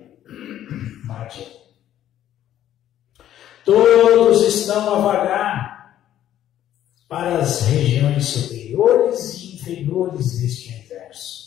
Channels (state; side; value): quieter; right; 11.7 dB